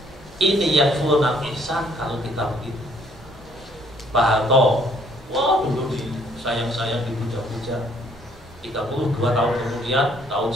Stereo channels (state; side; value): normal; both; correlation 0.63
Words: Ini yakfurunal ihsan kalau kita begitu. Pak Harto, wah dulu sayang-sayang dipuja-puja. 32 tahun kemudian, tahun